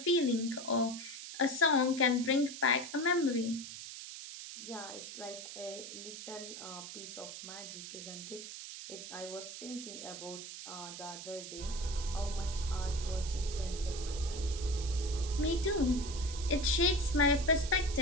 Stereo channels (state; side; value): noise; right; hiss, 10 dB below the sound